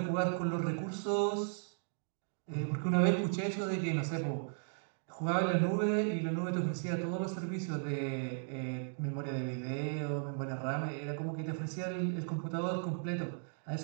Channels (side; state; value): left; silent; digital silence